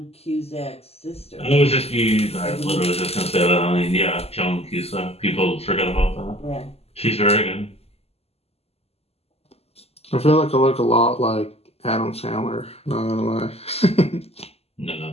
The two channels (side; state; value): right; late; 0.29 ms